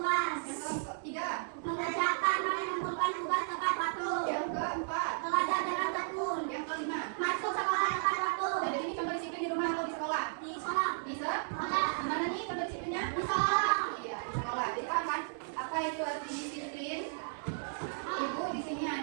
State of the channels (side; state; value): left; silent; 55 dB below the other